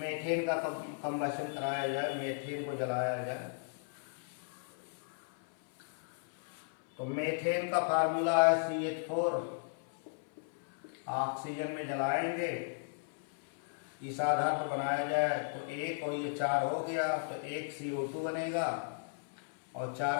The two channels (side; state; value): right; silent; 54 dB below the other